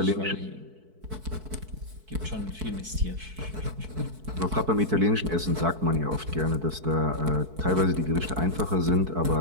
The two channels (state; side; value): late; left; 4.6 ms